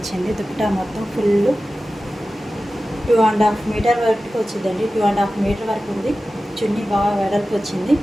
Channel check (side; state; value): both; normal; correlation 0.95